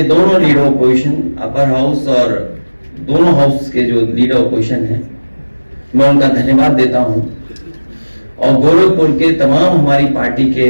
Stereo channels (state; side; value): inverted; both; correlation -1.00